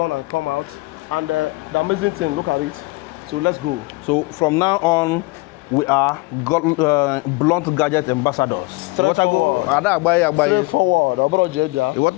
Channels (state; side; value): quieter; right; 23.8 dB